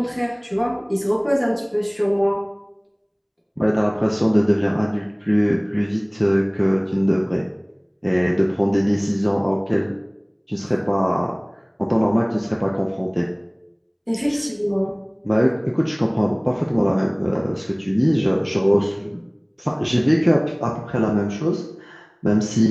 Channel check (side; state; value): both; identical; correlation 1.00